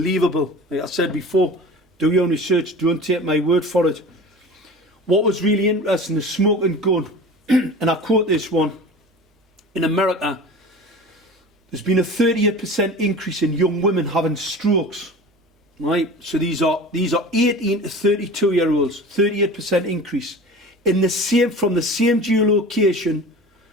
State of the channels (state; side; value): normal; both; correlation 0.37